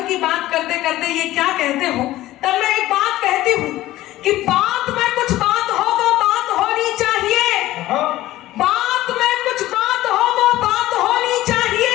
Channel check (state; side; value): quieter; right; 15.8 dB